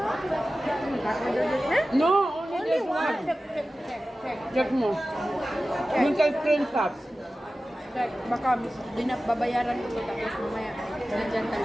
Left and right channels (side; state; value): both; normal; correlation 0.95